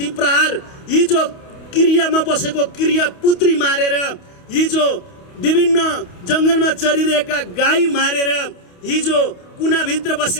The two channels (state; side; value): late; right; 28 ms